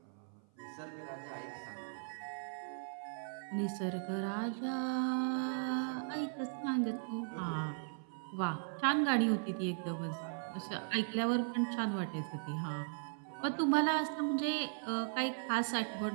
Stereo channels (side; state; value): left; silent; 52 dB below the other